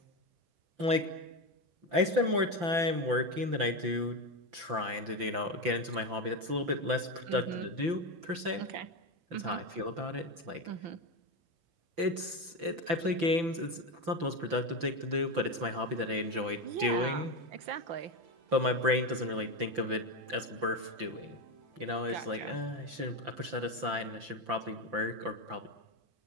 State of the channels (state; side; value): late; left; 5.9 ms